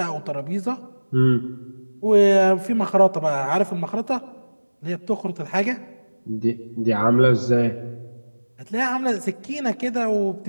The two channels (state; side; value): inverted; both; correlation -1.00